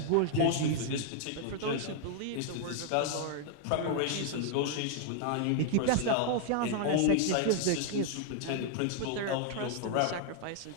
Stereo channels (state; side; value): different; both; correlation 0.00